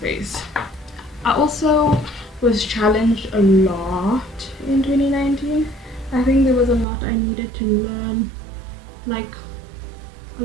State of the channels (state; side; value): drops out; left; at 6.9 s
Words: I also was challenged a lot in 2019. I think there was a lot I needed to learn, like a